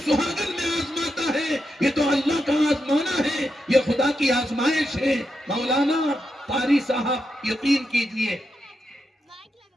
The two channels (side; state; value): both; normal; correlation 0.85